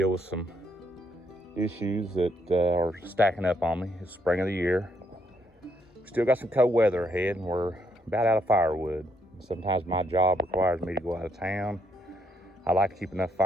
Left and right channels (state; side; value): normal; both; correlation 0.73